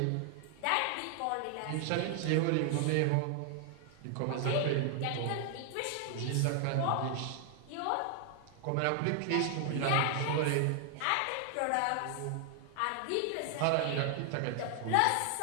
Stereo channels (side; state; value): both; different; correlation 0.00